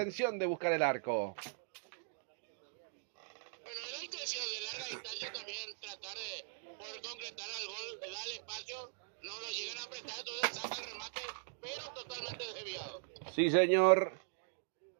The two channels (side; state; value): left; silent; digital silence